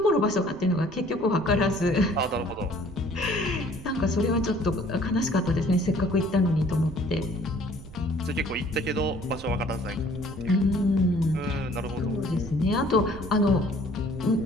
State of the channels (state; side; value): noise; right; rumble, 17 dB below the sound